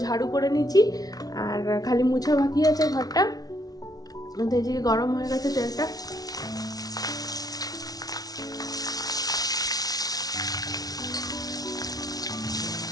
ঝাড়ু করে নিচ্ছি, আর খালি মুছা বাকি আছে ঘরটা। তো এই যে গরম হয়ে গেছে তেলটা।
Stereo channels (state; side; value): late; right; 0.18 ms